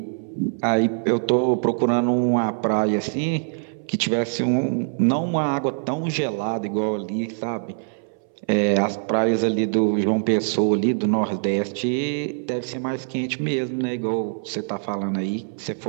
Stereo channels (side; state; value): left; silent; 63 dB below the other